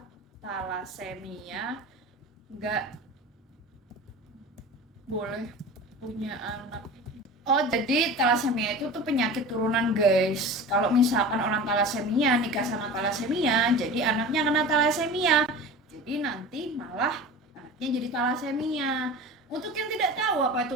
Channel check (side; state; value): both; normal; correlation 0.34